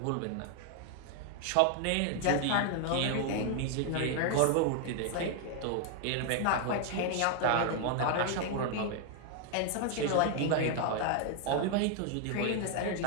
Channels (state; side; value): different; both; correlation 0.00